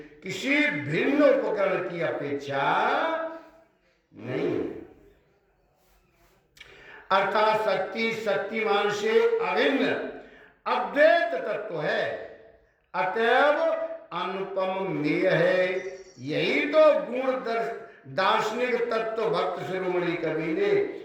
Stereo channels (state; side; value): identical; both; correlation 1.00